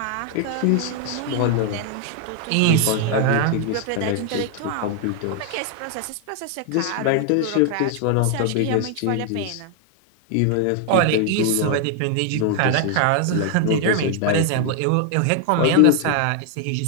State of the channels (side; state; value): both; different; correlation 0.00